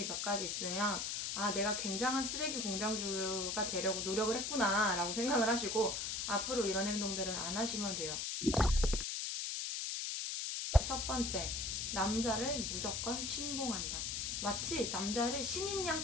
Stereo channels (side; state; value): left; noise; hiss, 2 dB below the sound